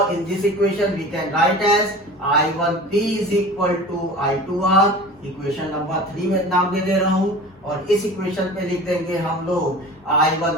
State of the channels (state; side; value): normal; both; correlation 0.38